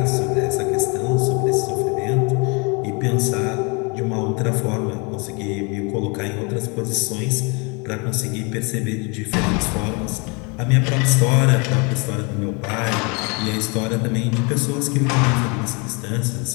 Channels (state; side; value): quieter; right; 31.4 dB